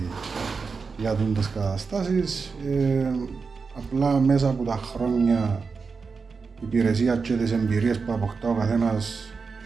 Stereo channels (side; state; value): left; quieter; 4.9 dB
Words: για τις καταστάσεις. Απλά μέσα από τα χρόνια η υπηρεσία και τις εμπειρίες που αποκτά ο καθένας,